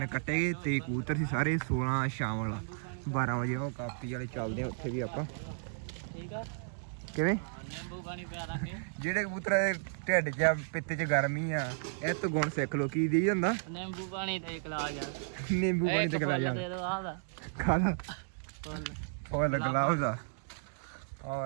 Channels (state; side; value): silent; left; digital silence